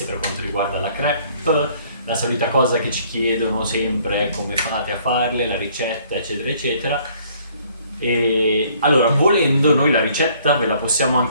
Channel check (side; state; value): both; inverted; correlation -0.60